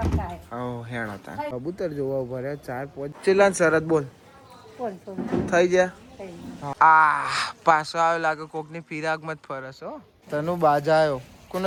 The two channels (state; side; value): identical; both; correlation 1.00